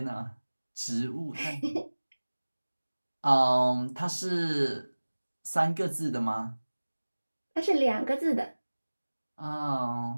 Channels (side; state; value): both; inverted; correlation -1.00